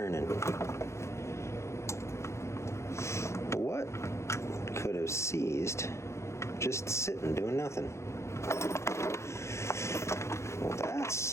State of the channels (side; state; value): right; late; 0.13 ms